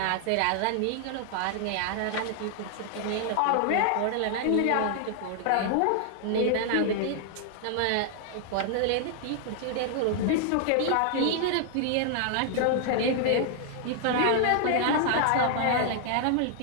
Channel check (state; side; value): different; both; correlation 0.00